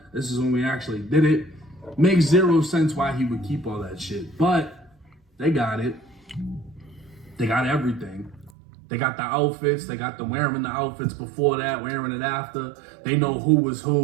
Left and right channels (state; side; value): drops out; left; at 8.5 s